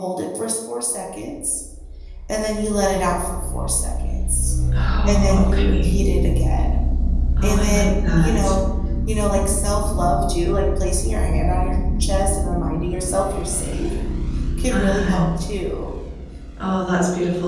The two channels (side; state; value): both; identical; correlation 1.00